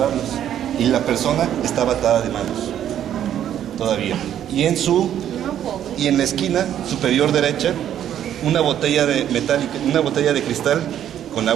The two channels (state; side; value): quieter; left; 10.5 dB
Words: y la persona estaba atada de manos todavía. Y en la esquina superior derecha una botella de metálica, una botella de cristal con